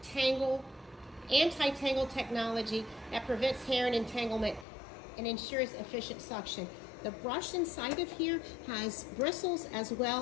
anti-tangle technology that prevents hair and entanglement and ensures efficient suction. The brush inside of here has bristles as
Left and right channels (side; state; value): right; drops out; at 4.7 s